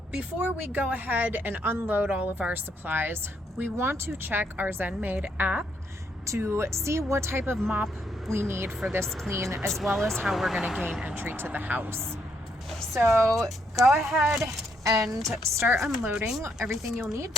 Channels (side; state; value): both; normal; correlation 0.74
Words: before we go ahead and unload all of our supplies, we want to check our ZenMaid app to see what type of mop we need for this clean, as well as how we're going to gain entry to the house. So go ahead and start unloading everything you'll need.